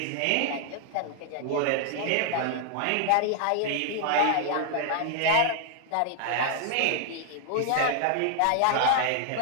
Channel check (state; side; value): different; both; correlation 0.00